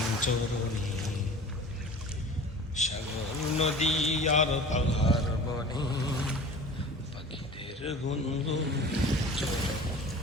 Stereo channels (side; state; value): both; normal; correlation 0.41